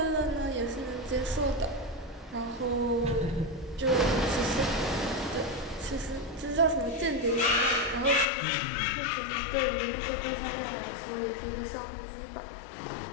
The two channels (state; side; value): drops out; right; at 8.2 s